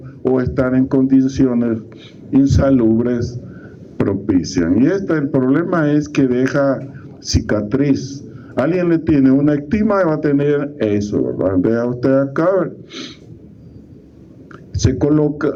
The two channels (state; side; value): identical; both; correlation 1.00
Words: o estar en condiciones insalubres propician. Y el problema es que deja cicatriz. Alguien le tiene una ectima y va a tener eso, ¿verdad? Vea usted acá, se coloca